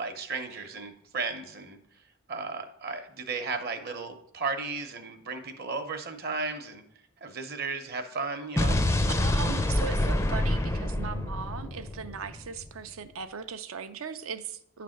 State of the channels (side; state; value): both; normal; correlation 0.56